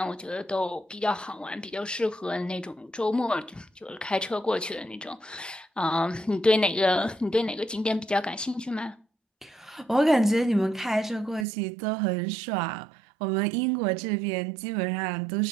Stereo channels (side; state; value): left; drops out; at 11.5 s